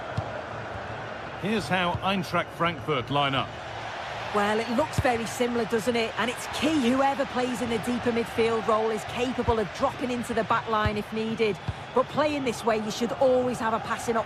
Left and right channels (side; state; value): both; identical; correlation 1.00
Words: Here's how Eintracht Frankfurt line up. Well, it looks very similar, doesn't it? And it's key whoever plays in the deeper midfield role is capable of dropping into the back line if needed. But playing this way, you should always have a passing